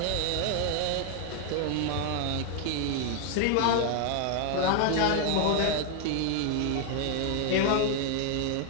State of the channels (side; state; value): both; different; correlation 0.00